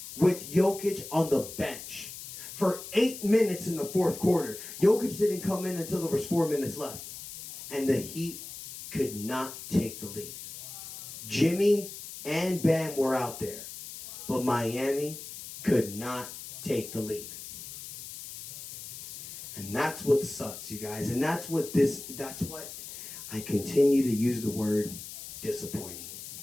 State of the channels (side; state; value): left; noise; hiss, 11 dB below the sound